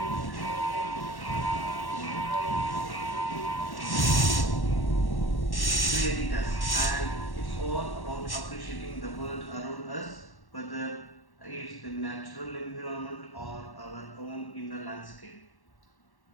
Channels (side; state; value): right; late; 1.1 ms